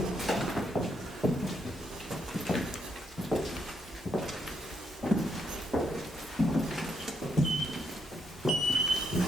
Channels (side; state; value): both; normal; correlation 0.77